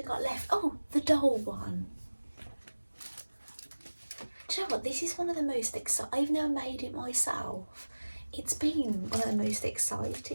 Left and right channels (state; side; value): inverted; both; correlation -1.00